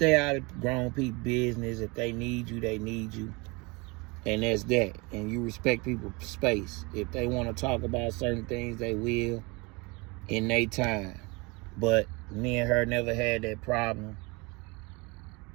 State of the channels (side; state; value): left; quieter; 27.0 dB